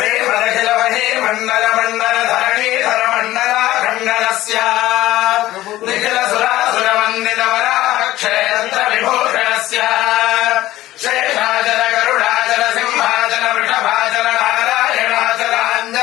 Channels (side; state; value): right; quieter; 15.6 dB